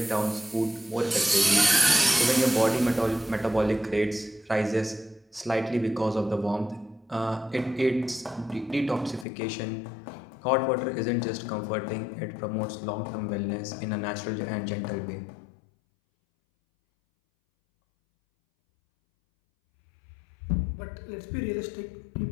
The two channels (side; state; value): right; drops out; at 9.2 s